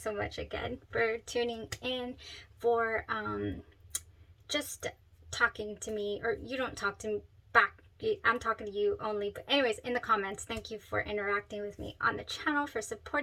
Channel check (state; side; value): identical; both; correlation 1.00